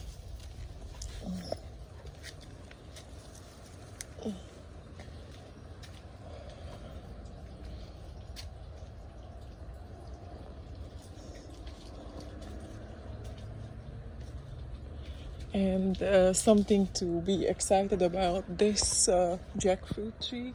And something to be excited about this jackfruit tree.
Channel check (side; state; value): both; identical; correlation 1.00